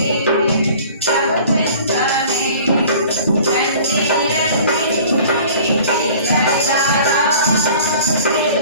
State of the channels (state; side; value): inverted; both; correlation -0.47